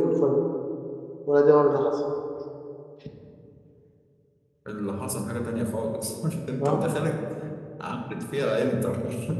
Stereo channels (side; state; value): both; identical; correlation 1.00